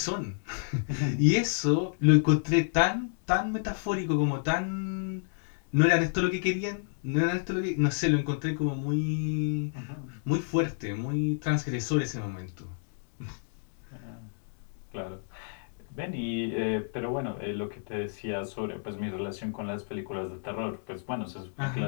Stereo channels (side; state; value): right; silent; digital silence